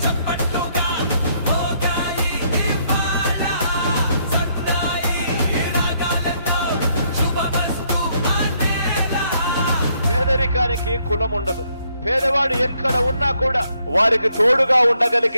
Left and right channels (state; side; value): inverted; both; correlation -0.72